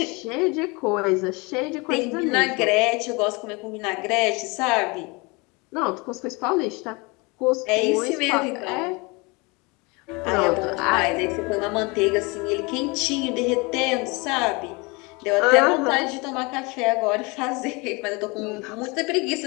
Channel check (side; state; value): right; quieter; 27.4 dB